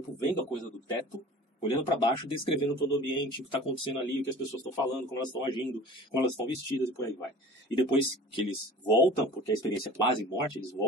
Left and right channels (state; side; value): normal; both; correlation 0.42